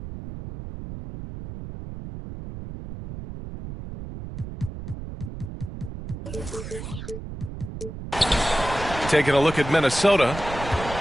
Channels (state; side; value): noise; right; rumble, 10 dB below the sound